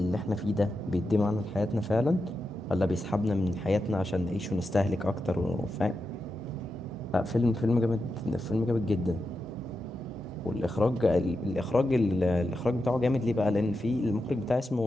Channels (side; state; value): both; normal; correlation 0.88